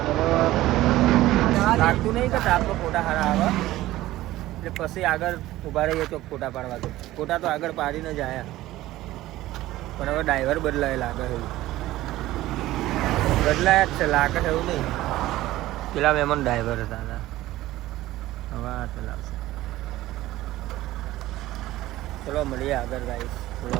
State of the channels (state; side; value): quieter; left; 16.1 dB